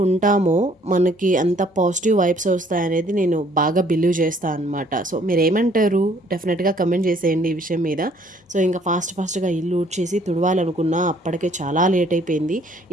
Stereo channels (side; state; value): both; normal; correlation 0.61